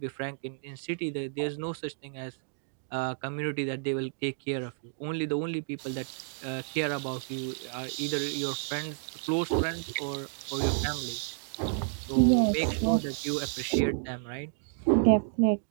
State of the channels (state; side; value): silent; left; digital silence